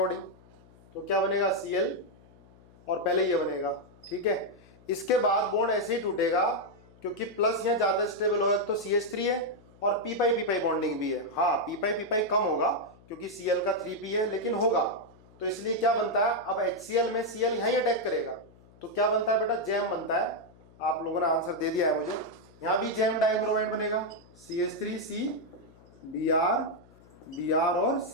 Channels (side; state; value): left; noise; hum, 26 dB below the sound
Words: तो क्या बनेगा? Cl और पहले ये बनेगा, ठीक है। इसके बाद बॉन्ड ऐसे ही टूटेगा क्योंकि प्लस यहाँ ज्यादा स्टेबल होगा, तो CH3 है और पी पाई बॉन्डिंग भी है। हाँ पी पाई कम होगा क्योंकि Cl का 3p है, लेकिन होगा। तो इसलिए क्या बनता है, अब HCl में Cl यहीं अटैक करेगा तो क्या बनता है बेटा? जैम बनता है। आप लोगों ने आंसर दे दिया है मुझे। यहां भी जैम डाइब्रोमाइड बनेगा, CH3C Br और